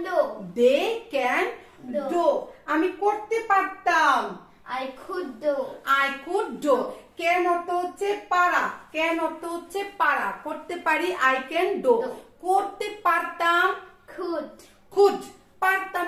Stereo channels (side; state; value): both; identical; correlation 1.00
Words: do. they can Do। do। আমি করতে পারতাম, I could do. I could do। can অর্থ হচ্ছে পারা, can অর্থ হচ্ছে পারা, করতে পারি, I can do। Do। করতে পারতাম, Could. could। পারতাম